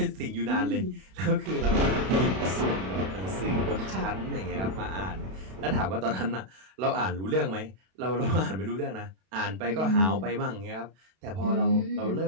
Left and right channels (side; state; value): left; late; 32 ms